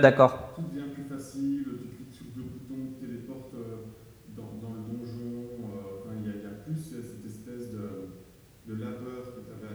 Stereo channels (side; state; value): both; identical; correlation 1.00